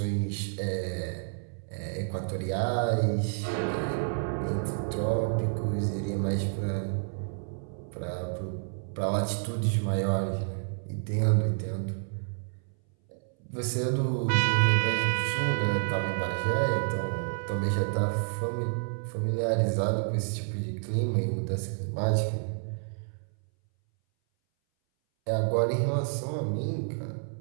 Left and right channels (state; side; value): silent; left; 58 dB below the other